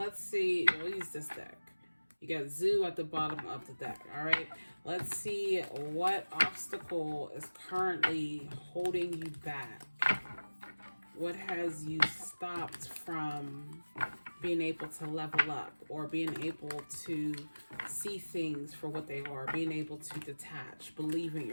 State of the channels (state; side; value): inverted; both; correlation -1.00